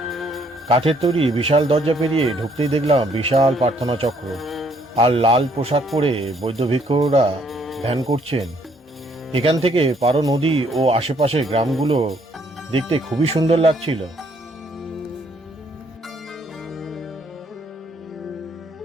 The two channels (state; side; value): normal; both; correlation 0.67